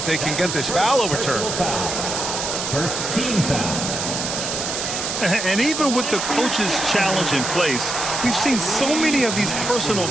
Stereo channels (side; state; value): right; noise; hiss, 3 dB below the sound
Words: they can get this foul overturned. First team foul. And even with the coach's challenge in place, we've seen so many of these personal